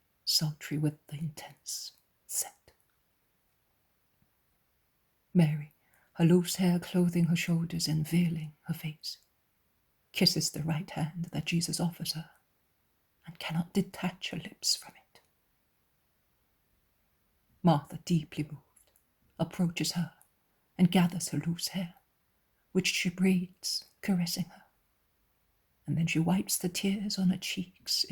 sultry with the intense scent. Mary, her loose hair clothing her shoulders and veiling her face, kisses the right hand that Jesus offers her and cannot detach her lips from it. Martha, deeply moved, approaches her and gathers her loose hair, which she braids, caressing her. And then she wipes the tears on her cheeks,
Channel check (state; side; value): identical; both; correlation 1.00